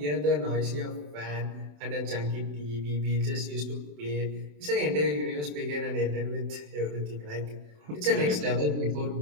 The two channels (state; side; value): late; left; 27 ms